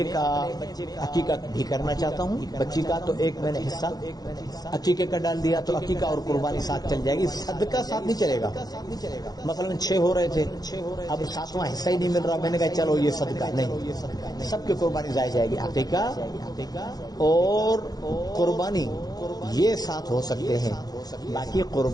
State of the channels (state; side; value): late; right; 0.19 ms